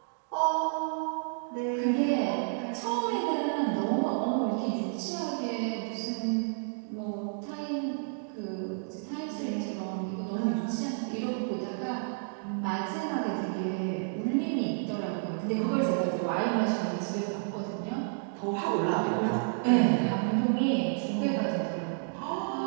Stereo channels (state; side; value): silent; left; digital silence